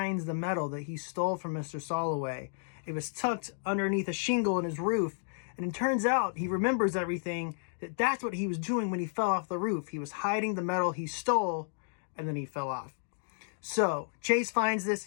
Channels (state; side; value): silent; right; digital silence